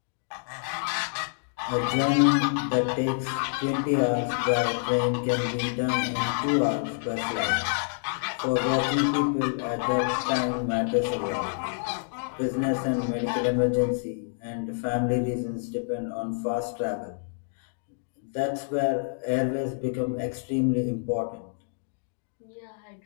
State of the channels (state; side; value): silent; right; digital silence